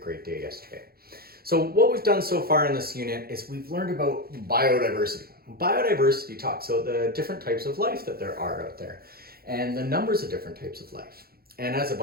day yesterday. So what we've done so far in this unit is we've learned about biodiversity. Biodiversity talks about the different types of life that there are out there and the numbers of different types of life. And as a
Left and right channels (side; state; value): left; late; 0.44 ms